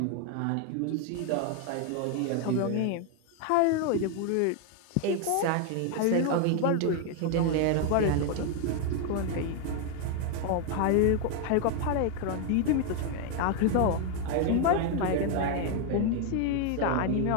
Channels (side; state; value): both; different; correlation 0.01